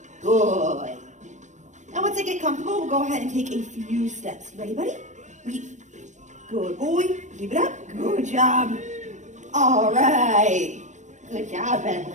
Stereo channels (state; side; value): late; left; 0.35 ms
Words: Good. Now, once I get comfortable, we'll go ahead and take a few steps. Ready, buddy? Weave. Good boy. Keep it up. Good job. All right. Good job,